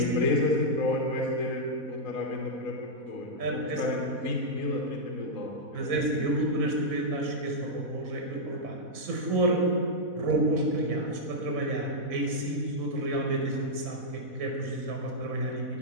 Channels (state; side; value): late; left; 4.1 ms